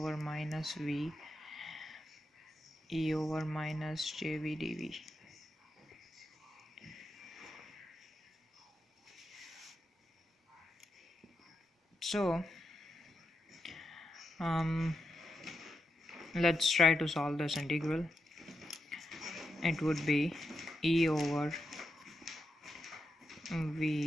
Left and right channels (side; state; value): both; normal; correlation 0.86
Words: minus v e over minus jv dv. So let's try to solve this integral. It would be e over